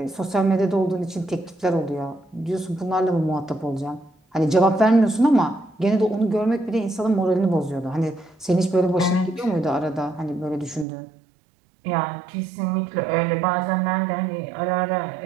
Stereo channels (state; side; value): drops out; left; at 10.9 s